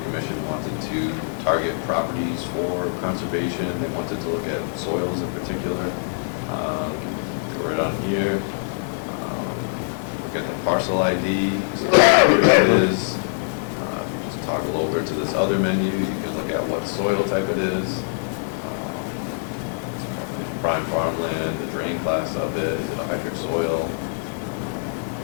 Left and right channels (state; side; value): silent; right; 63 dB below the other